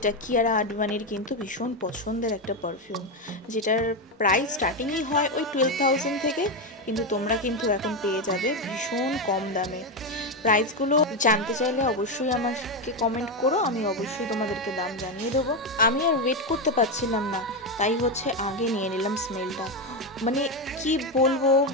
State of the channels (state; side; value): normal; both; correlation 0.10